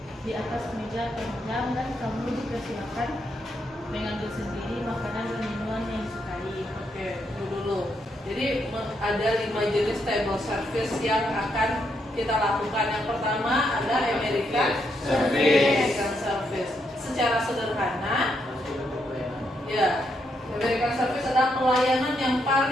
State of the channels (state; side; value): normal; both; correlation 0.78